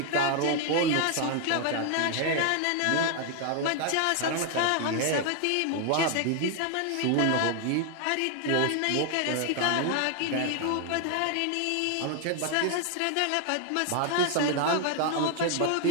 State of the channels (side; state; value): both; different; correlation 0.00